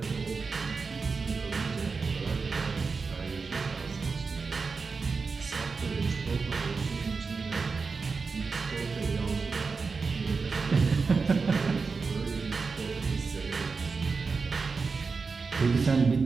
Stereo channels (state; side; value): quieter; left; 4.7 dB